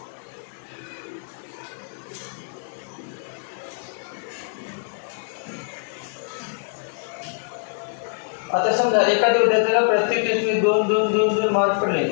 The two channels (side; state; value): right; silent; digital silence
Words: आता समजा एखाद्या विद्यार्थ्याला प्रत्येक टेस्टमध्ये 2 मार्क पडले